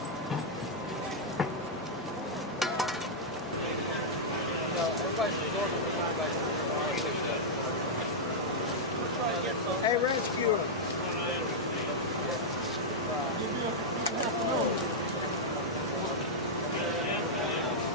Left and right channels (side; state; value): both; normal; correlation -0.06